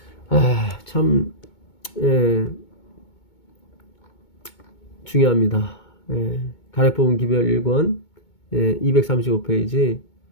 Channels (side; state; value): right; late; 2.2 ms